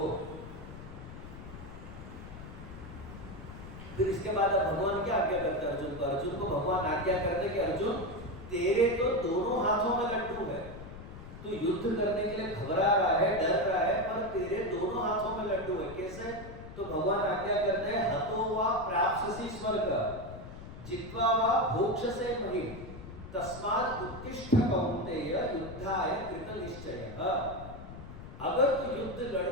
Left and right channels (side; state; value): left; noise; rumble, 13 dB below the sound